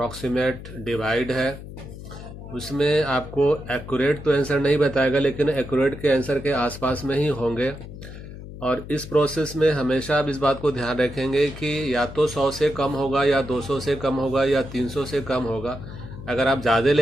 डिवाइड है। उसमें आपको एक्यूरेट तो आंसर नहीं बताएगा, लेकिन एक्यूरेट के आंसर के आसपास में ही होंगे। और इस प्रोसेस में हमेशा आप इस बात को ध्यान रखेंगे कि या तो 100 से कम होगा, या 200 से कम होगा, या 300 से कम होगा। अगर आप ज़्यादा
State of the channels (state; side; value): noise; left; hum, 13 dB below the sound